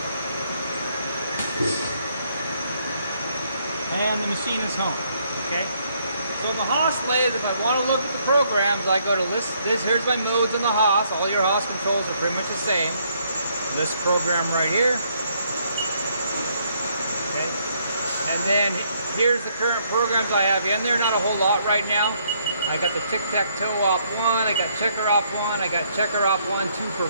And the machine is home. Okay. So the Haas lathe, if I want to look at the programs, I go to list this. Here's my modes in the Haas. All your Haas controls are pretty much the same. List program right here. Okay. And then here's the current programs I have in there. Not a whole lot right now. I got the tic-tac-toe off 1. I got checker off 1. I got checker off 1, 2 per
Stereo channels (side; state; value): both; inverted; correlation -0.70